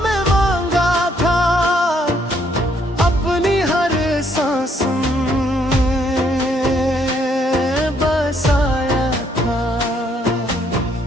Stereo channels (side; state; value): both; normal; correlation 0.69